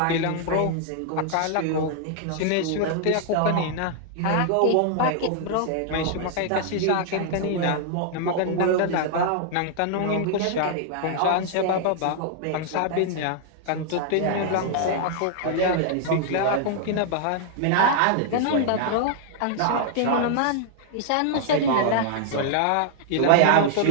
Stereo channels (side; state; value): both; different; correlation -0.01